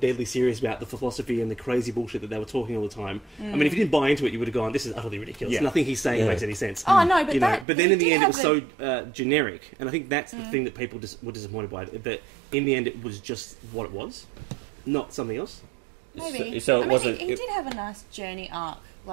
serious about the philosophy and the crazy bullshit that they were talking all the time. I mean, if you didn't buy into it, you would have gone, "This is utterly ridiculous. Yeah. Nothing he's saying makes any sense." Oh no, but but then in the end, it was so generic, and I think that's the thing that people were disappointed by. That in the end, it was just what it was, not something else. Maybe. So it wasn't. He did have a nice journey arc,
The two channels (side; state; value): left; drops out; at 7.7 s